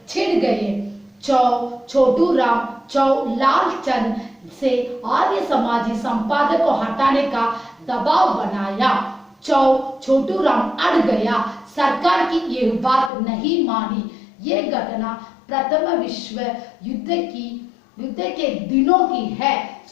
छिड़ गए। छोटू राम लाल चंद से आर्य समाजी संपादक को हटाने का दबाव बनाया। छोटू राम अड़ गया, सरकार की ये बात नहीं मानी। ये घटना प्रथम विश्व युद्ध के दिनों की है।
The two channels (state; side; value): drops out; right; at 13.1 s